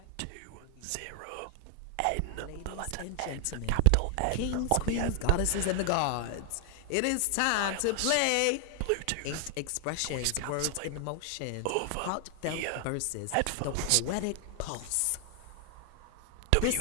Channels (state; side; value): different; both; correlation 0.00